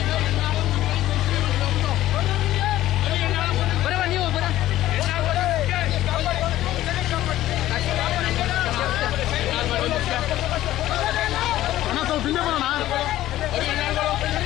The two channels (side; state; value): right; quieter; 14.4 dB